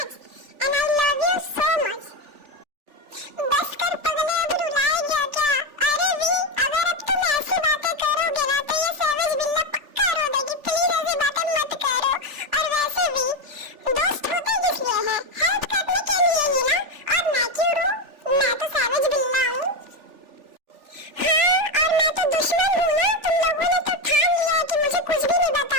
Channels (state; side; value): late; left; 3.4 ms